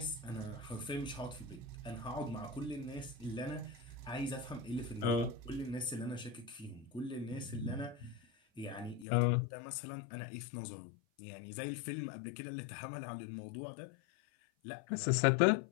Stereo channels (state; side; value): drops out; right; at 9.1 s